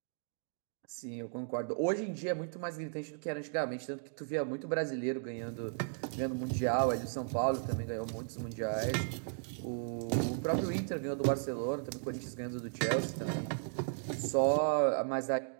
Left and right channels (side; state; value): left; silent; digital silence